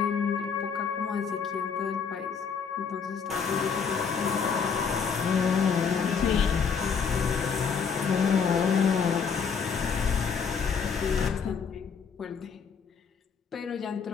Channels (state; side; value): quieter; right; 6.2 dB